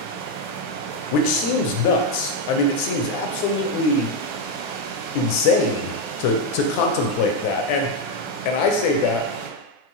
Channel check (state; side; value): late; right; 9.6 ms